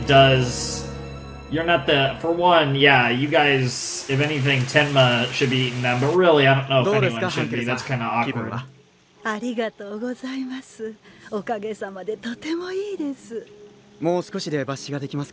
does. You're not the. For one, yeah, you guys, if anything, Tenma should be eating them. But really, I don't know if anyone should be. That's kind of awkward. ありがとうございます。おかげさまでとてもいいです。もう少しで抜歯ができます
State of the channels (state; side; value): identical; both; correlation 1.00